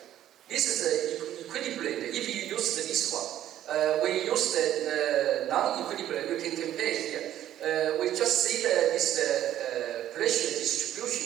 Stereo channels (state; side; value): quieter; left; 12.1 dB